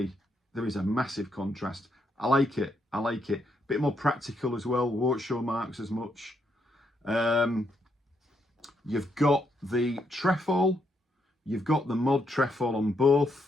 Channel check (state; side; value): normal; both; correlation 0.77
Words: a massive contrast. I like it. I like it. A bit more practical as well. Won't show marks as much. You've got the trefoil. You've got the mod trefoil on